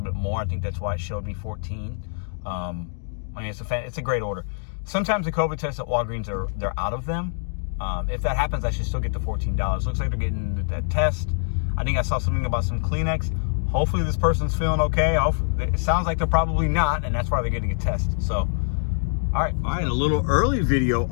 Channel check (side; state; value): right; silent; digital silence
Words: bit more. I think that's why it showed me 14. I mean, it's a great order. Sometimes the COVID tests at Walgreens they're out of them. If that happens, I should still get the $14. Looks like they're getting that test. I think I saw something about some Kleenex. Hopefully this person's feeling okay. It sounds like they're probably not, and that's why they're getting a test. So, all right, a little early video